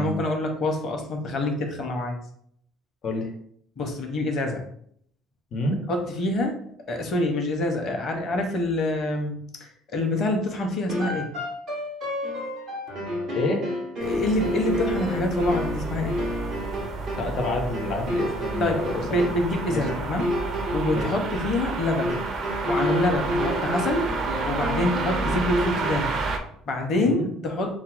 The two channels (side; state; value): both; normal; correlation 0.58